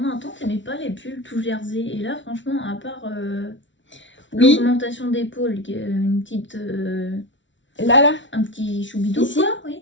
un temps t'aimais pas les pulls tout jersey et là franchement à part l'augmentation d'épaule, une petite là un petit choubidou ici, quoi,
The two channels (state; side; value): late; right; 0.55 ms